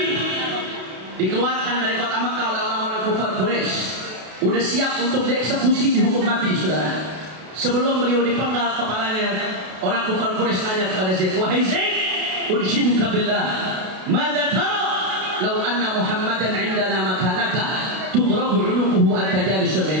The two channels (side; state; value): left; late; 32 ms